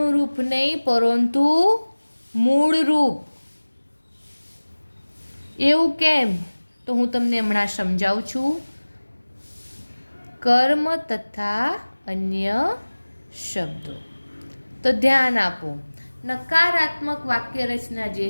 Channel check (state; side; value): inverted; both; correlation -1.00